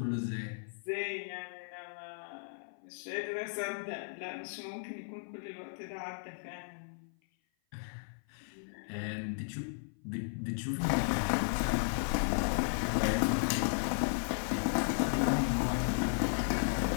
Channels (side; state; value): right; silent; 54 dB below the other